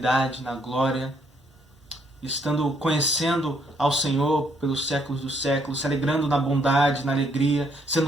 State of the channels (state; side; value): normal; both; correlation 0.70